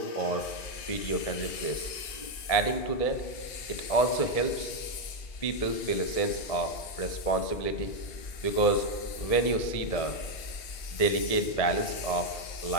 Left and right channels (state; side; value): late; right; 2.8 ms